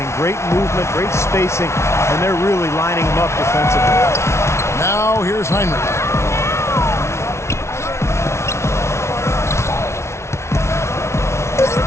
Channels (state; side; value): late; right; 0.13 ms